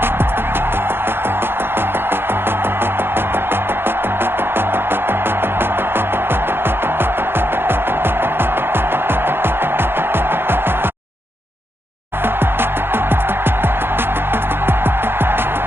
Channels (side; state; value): left; late; 0.11 ms